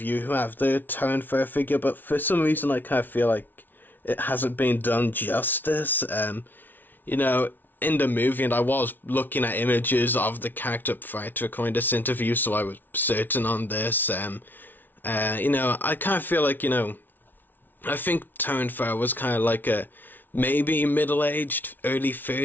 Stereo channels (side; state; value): right; late; 0.089 ms